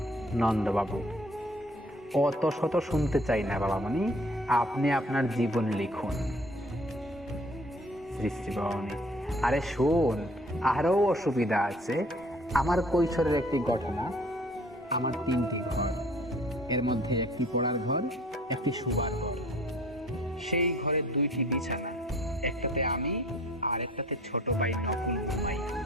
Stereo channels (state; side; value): normal; both; correlation 0.53